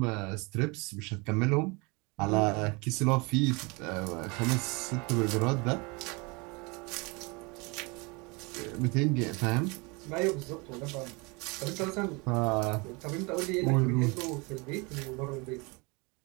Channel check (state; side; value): quieter; left; 28.2 dB